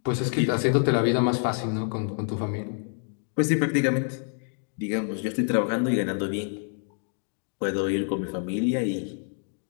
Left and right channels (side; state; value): right; silent; 56 dB below the other